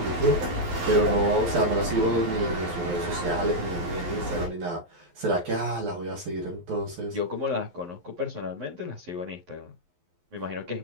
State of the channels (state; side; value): late; left; 11 ms